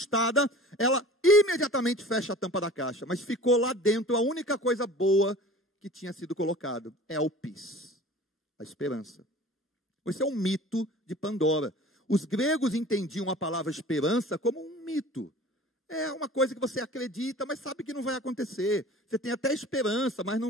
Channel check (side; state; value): both; normal; correlation 0.43